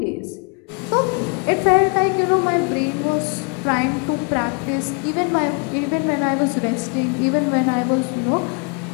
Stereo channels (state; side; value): quieter; right; 35.4 dB